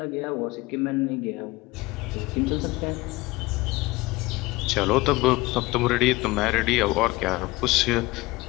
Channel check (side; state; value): right; quieter; 21.1 dB